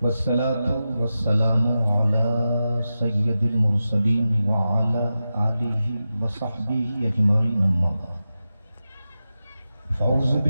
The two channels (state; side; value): inverted; both; correlation -0.91